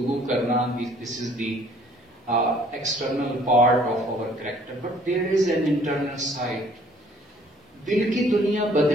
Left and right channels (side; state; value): both; normal; correlation 0.58